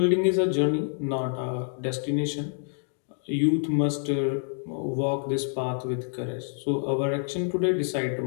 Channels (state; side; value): silent; right; 56 dB below the other